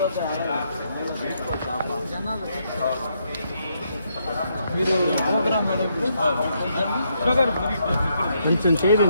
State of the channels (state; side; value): inverted; both; correlation -0.77